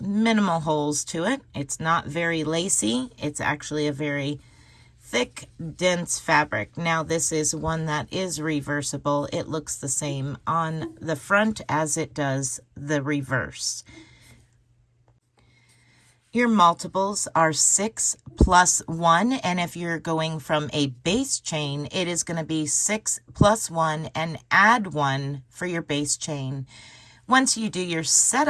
minimal holes to it. It's not very lacy. It's actually a very thick, dense fabric. Now this is one that is reversible. It looks the same on the front as it does the reverse. Your multiples are 6 plus 1, and if you're going from a base chain, it is going to be 6 plus 1 and add 1 for your base chain. Once you do your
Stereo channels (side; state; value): both; identical; correlation 1.00